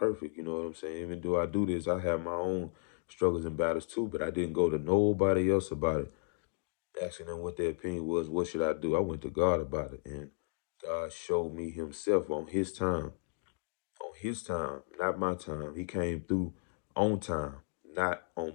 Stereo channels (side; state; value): right; silent; digital silence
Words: You know what I'm saying? Even though I do this, I have my own struggles and battles too. But I didn't go to nobody else about it, asking them what their opinion was. What should I do? I went to God about it, and God showed me Himself on His time. On His time, not my time. He came through on time, not on